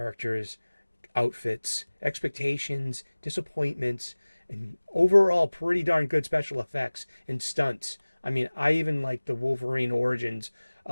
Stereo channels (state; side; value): inverted; both; correlation -1.00